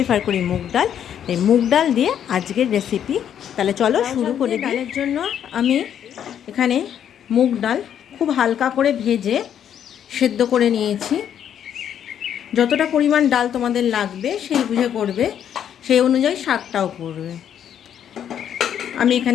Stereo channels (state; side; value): quieter; right; 9.4 dB